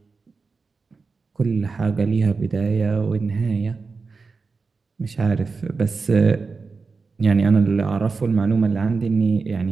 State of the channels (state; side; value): quieter; left; 4.5 dB